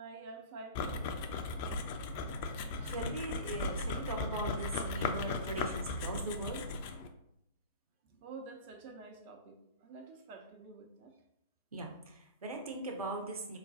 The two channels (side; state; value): both; inverted; correlation -0.34